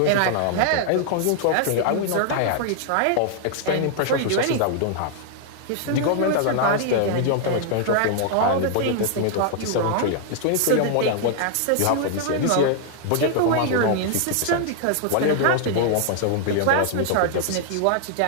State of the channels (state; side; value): different; both; correlation 0.00